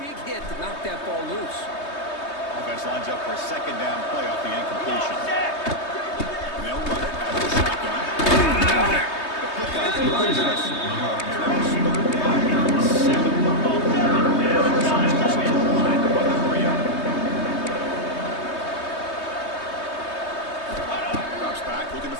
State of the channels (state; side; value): late; right; 3.2 ms